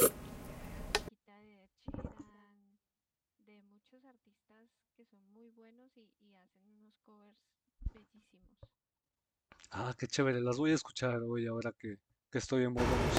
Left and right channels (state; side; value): identical; both; correlation 1.00